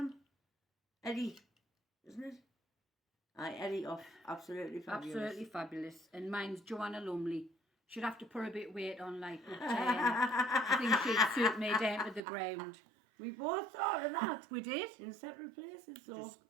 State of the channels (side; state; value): left; drops out; at 12.2 s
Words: Eddie, isn't it? Eddie off Absolutely Fabulous. Absolutely fabulous. And mine's Joanna Lumley. She'd have to put a bit of weight on, like, but I think she'd suit me down to the ground. We both thought of that. We did. In separate places, so. Just